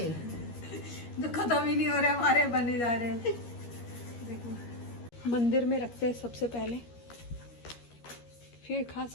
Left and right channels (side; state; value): right; late; 13 ms